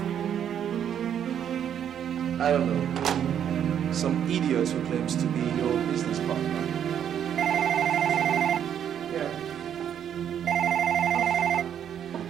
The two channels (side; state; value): left; quieter; 9.2 dB